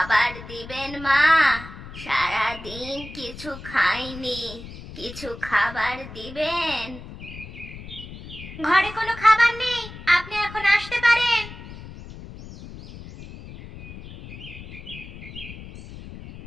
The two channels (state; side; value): noise; left; rumble, 14 dB below the sound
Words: দিবেন মা? সারাদিন কিছু খাইনি, কিছু খাবার দিবেন? ঘরে কোনো খাবার নেই, আপনি এখন আসতে পারেন।